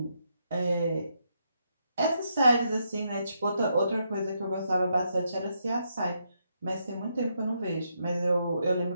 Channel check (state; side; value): inverted; both; correlation -0.79